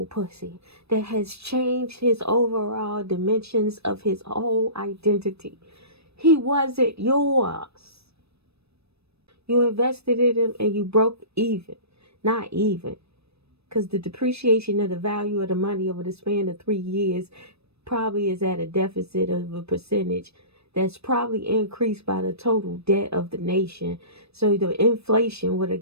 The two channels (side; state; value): left; late; 0.78 ms